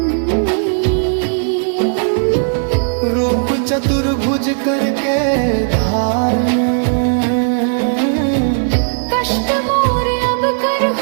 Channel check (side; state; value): left; silent; digital silence